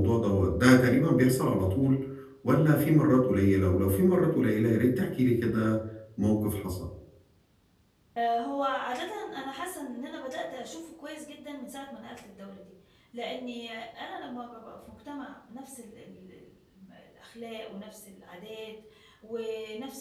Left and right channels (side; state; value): both; identical; correlation 1.00